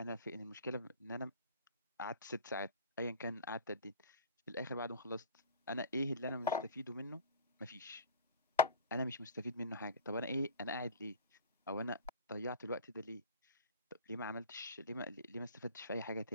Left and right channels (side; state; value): both; inverted; correlation -0.39